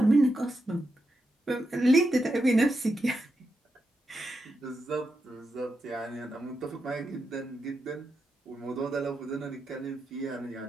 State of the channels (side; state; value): both; normal; correlation 0.86